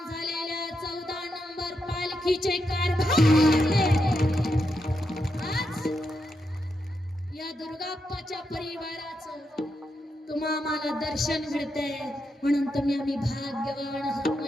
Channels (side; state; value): both; normal; correlation 0.84